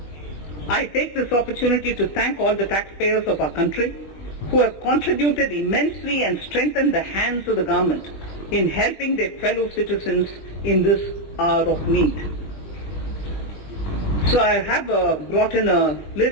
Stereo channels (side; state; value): right; late; 21 ms